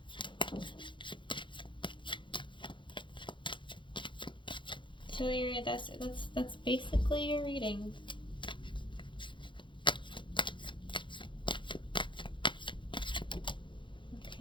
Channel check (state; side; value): late; right; 0.23 ms